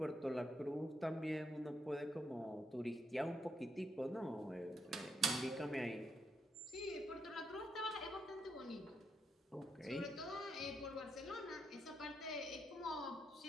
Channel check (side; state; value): both; normal; correlation 0.80